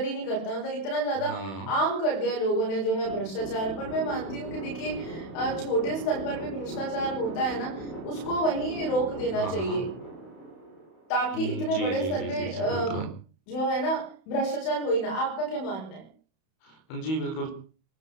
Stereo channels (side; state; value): right; late; 31 ms